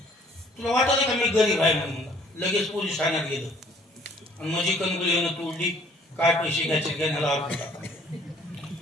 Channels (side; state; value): both; normal; correlation 0.58